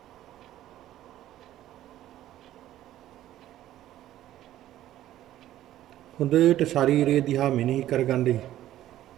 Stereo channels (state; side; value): quieter; left; 13.3 dB